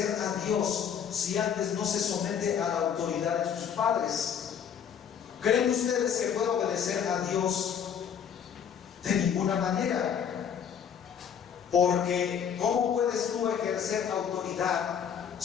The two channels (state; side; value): quieter; right; 8.0 dB